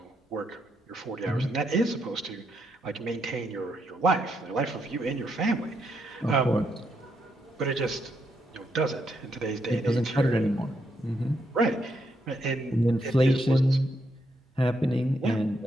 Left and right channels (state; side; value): normal; both; correlation 0.78